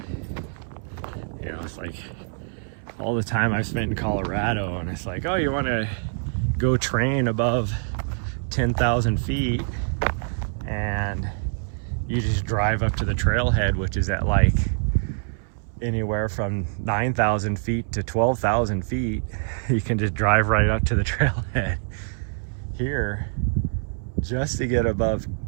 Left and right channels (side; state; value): left; silent; 62 dB below the other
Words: You know, it's like all the time I've spent in Colorado, and it's like, oh, you want to go train above 10,000 feet, and you just drive up to the trailhead, which is at like anywhere from 9,000 feet to 12,000 feet. You can just drive right up to the trailhead. Here, just to get above,